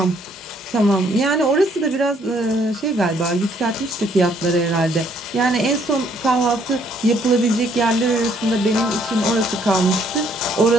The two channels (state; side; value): normal; both; correlation 0.66